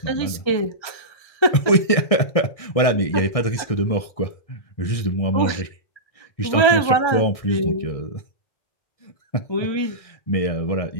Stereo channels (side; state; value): right; late; 1.6 ms